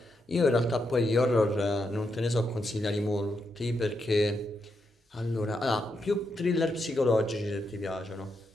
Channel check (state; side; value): normal; both; correlation 0.82